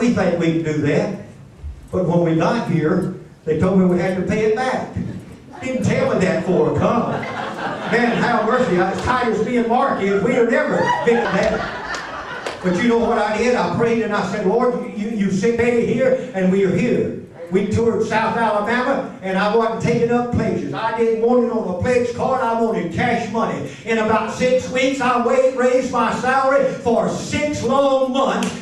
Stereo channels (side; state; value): both; identical; correlation 1.00